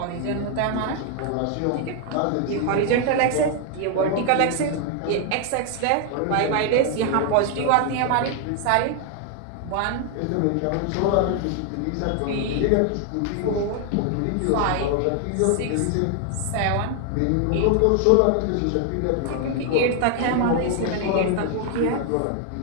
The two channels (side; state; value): both; different; correlation 0.00